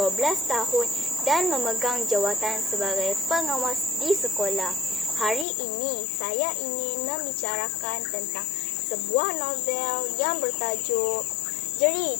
tahun dan memegang jawatan sebagai pengawas di sekolah. Hari ini saya ingin membicarakan tentang sebuah novel yang bertajuk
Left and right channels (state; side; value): drops out; right; at 5.5 s